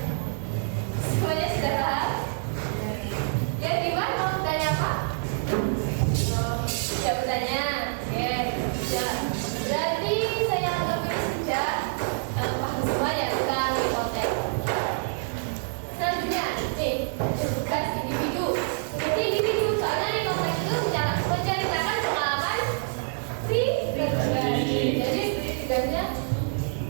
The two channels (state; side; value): silent; left; digital silence